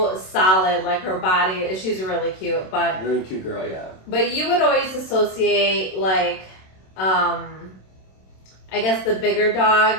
solid, like her body. She's really cute, but really cute girl, yeah. But you would always associate like, I guess the bigger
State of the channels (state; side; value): late; right; 27 ms